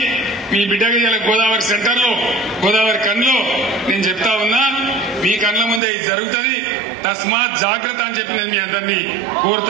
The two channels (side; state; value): left; drops out; at 5.8 s